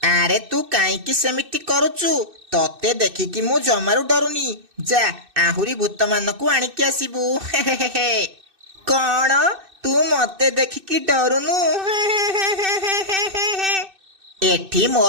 ଆରେ ତୁ କାହିଁକି ସେମିତି କରୁଛୁ? ତତେ ଦେଖିକି ମୁଁ ଜମାରୁ ଡରୁନି। ଯା, ଆହୁରି ଭୂତମାନଙ୍କୁ ଆଣିକି ଆସିବୁ। କଣ? ତୁ ମତେ ଦେଖିକି ଡରୁନୁ? ଏଠି ମୋ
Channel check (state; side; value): late; left; 2.6 ms